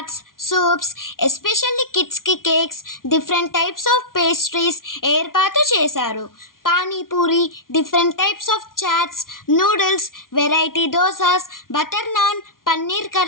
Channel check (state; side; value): late; right; 0.91 ms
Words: సూప్స్, ఎస్పెషల్లీ కిడ్స్కి cakes, different types of pastries ఏర్పాటు చేశారు. Panipuri, different types of chaats, noodles, variety dosas, butter naan, paneer